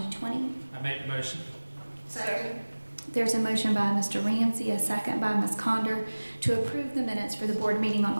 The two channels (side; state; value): both; inverted; correlation -1.00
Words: I made the motion. Second. There's a motion by Mr. Ramsey, a second by Ms. Conder to approve the minutes for the board meeting on